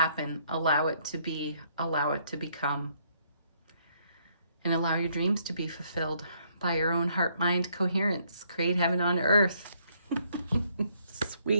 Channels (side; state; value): both; inverted; correlation -0.69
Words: Allow it to be. Allow it to become. And allow your dreams to be fulfilled by your own heart-mind coherence. Create heaven on earth.